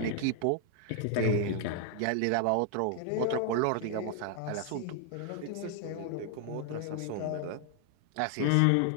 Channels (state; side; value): different; both; correlation 0.00